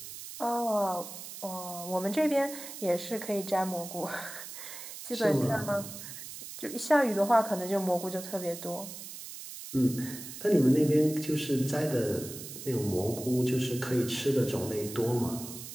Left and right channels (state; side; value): noise; right; hiss, 11 dB below the sound